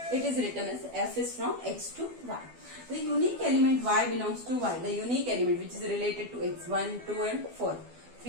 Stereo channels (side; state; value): left; late; 12 ms